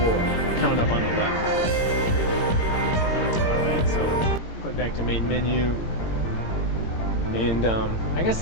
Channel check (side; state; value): right; late; 18 ms